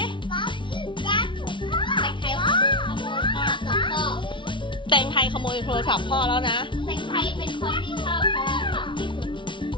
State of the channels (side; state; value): right; late; 0.24 ms